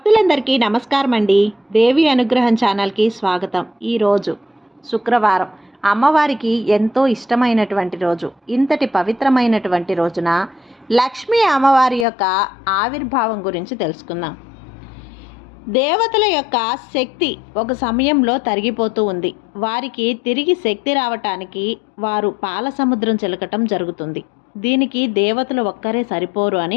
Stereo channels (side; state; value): right; drops out; at 12.1 s